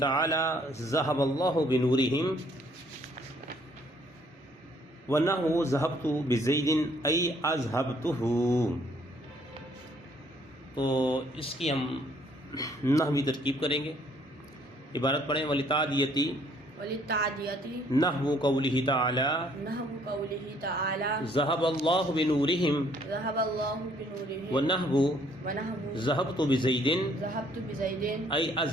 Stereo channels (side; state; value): both; normal; correlation 0.64